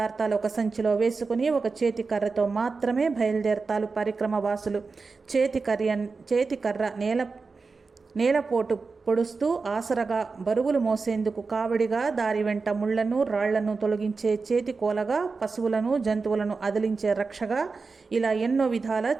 ఒక సంచిలో వేసుకుని ఒక చేతికర్రతో మాత్రమే బయలుదేరతారు పరిక్రమ వాసులు. చేతికర్ర నేలపోటు పొడుస్తూ ఆసరగా, బరువులు మోసేందుకు కావడిగా, దారి వెంట ముళ్లను, రాళ్లను తొలగించే చేతి కోలగా, పశువులను, జంతువులను అదిలించే రక్షగా, ఇలా ఎన్నో విధాల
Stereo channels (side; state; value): left; quieter; 4.4 dB